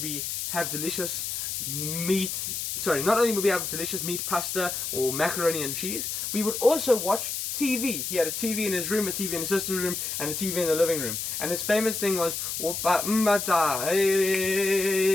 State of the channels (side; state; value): left; noise; hiss, 3 dB below the sound